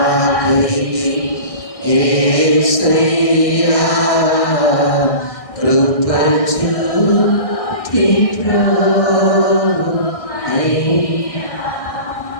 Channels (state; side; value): late; right; 1.6 ms